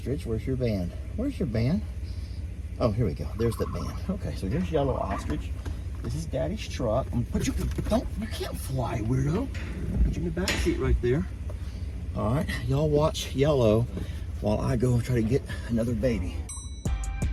Where's your band? Where's your band? Oh, here we go. There's the band. Okay, so here's yellow ostrich. This is Daddy's truck. I'm gonna put you. You can't fly, weirdo. Put you in the back seat right there. All right, y'all watch yellow while I go try to get another baby.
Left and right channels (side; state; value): both; identical; correlation 1.00